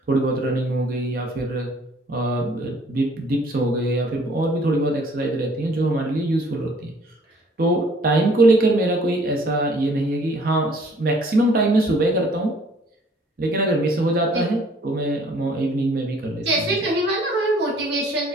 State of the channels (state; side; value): normal; both; correlation 0.58